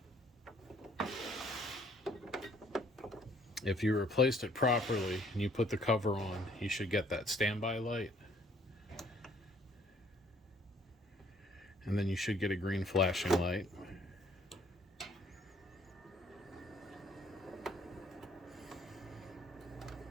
If you replaced it properly and you put the cover on, you should get that standby light. And then you should get a green flashing light.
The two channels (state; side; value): normal; both; correlation 0.61